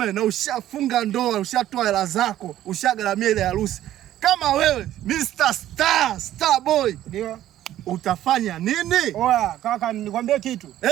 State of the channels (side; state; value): left; quieter; 12.9 dB